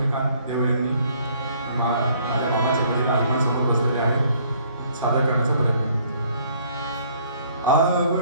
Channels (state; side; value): inverted; both; correlation -0.62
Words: देवळे यांनी. माझ्या मामाचे वडील आई समोर बसलेले आहे. सादर करण्याचा प्रयत्न.